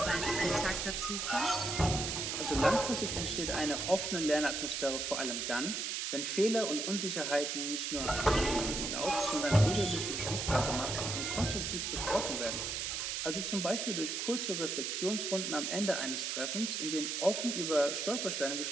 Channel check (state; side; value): noise; right; hiss, 2 dB below the sound